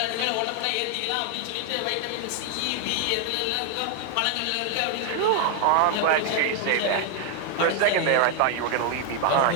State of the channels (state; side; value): different; both; correlation 0.00